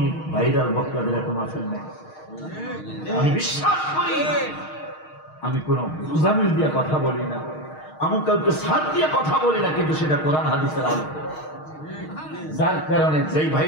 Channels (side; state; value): right; late; 6.4 ms